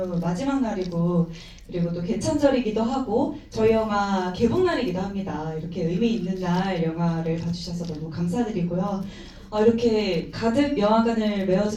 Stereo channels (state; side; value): identical; both; correlation 1.00